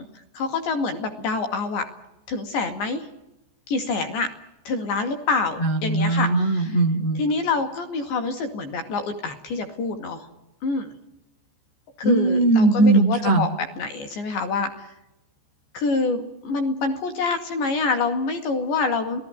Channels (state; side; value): late; right; 14 ms